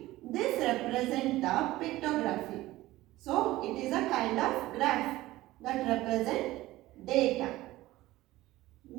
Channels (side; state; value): left; quieter; 17.1 dB